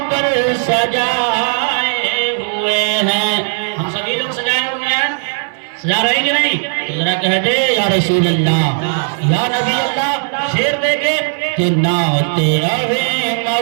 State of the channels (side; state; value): left; silent; 64 dB below the other